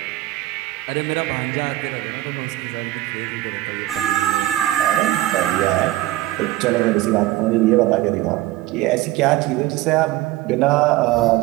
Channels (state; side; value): quieter; left; 16.0 dB